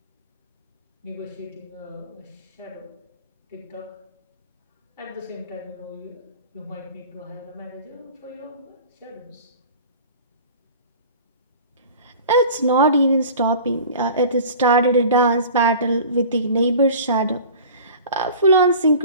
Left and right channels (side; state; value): both; inverted; correlation -0.41